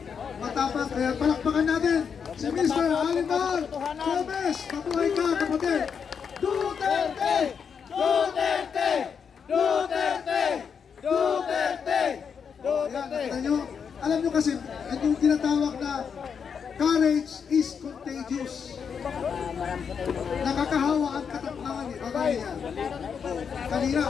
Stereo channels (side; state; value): right; quieter; 6.7 dB